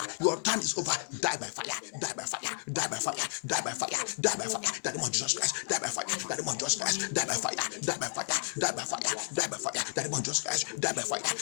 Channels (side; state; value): right; silent; 56 dB below the other